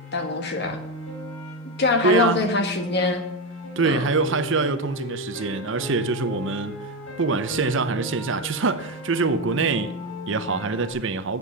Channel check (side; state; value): both; normal; correlation 0.12